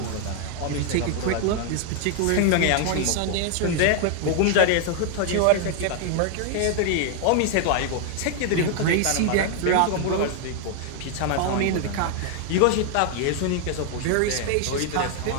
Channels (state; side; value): different; both; correlation 0.00